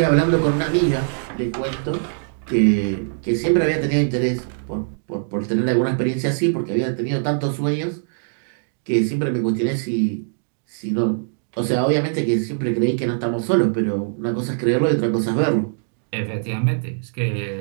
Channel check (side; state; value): left; silent; digital silence